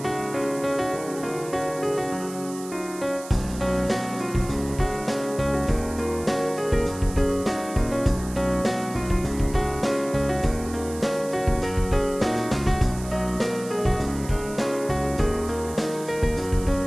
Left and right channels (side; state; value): right; noise; hiss, 15 dB below the sound